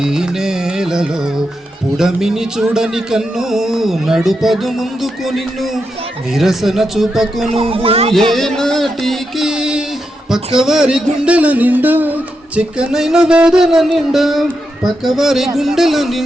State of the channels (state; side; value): normal; both; correlation 0.85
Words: ఈ నేలలో. పుడమిని చూడని కన్ను నడుపదు ముందుకు నిన్ను, నిరసన చూపకు నువ్వు ఏ నాటికి. పక్కవారి గుండెల నిండా చిక్కనైన వేదన నిండా, పక్కవారి గుండెల